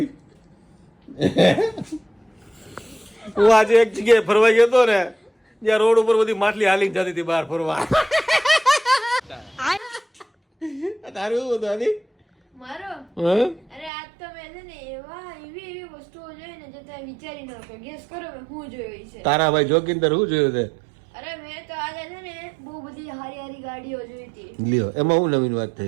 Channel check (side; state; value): left; drops out; at 13.9 s